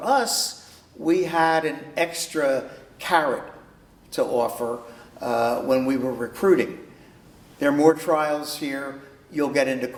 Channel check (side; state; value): both; identical; correlation 1.00